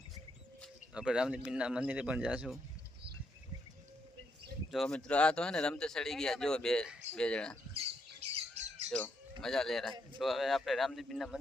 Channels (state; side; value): normal; both; correlation 0.78